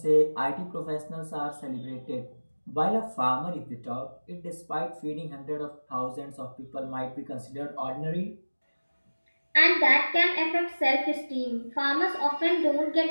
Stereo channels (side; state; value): both; inverted; correlation -1.00